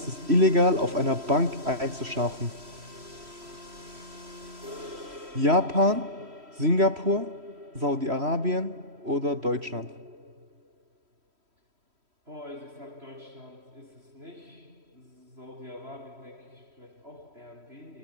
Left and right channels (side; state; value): left; late; 3.1 ms